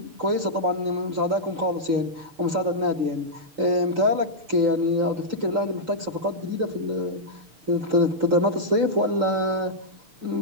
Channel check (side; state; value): left; late; 6.7 ms